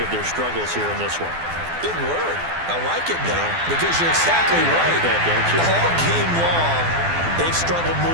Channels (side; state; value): left; late; 12 ms